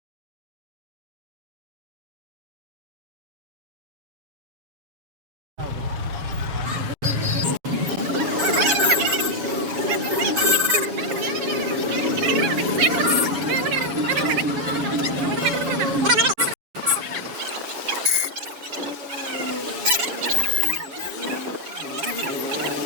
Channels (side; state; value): left; late; 7.1 ms